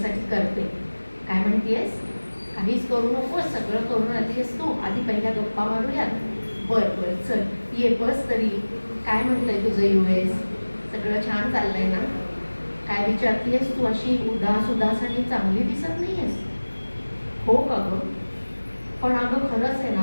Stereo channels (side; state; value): both; inverted; correlation -1.00